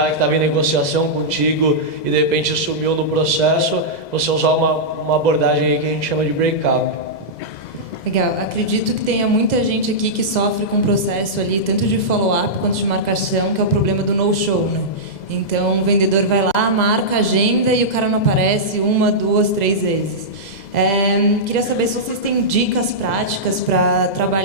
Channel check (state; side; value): late; right; 2.0 ms